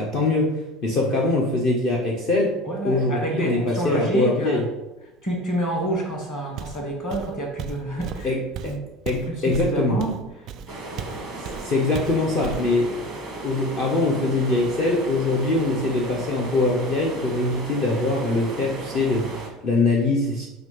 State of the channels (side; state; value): both; normal; correlation 0.36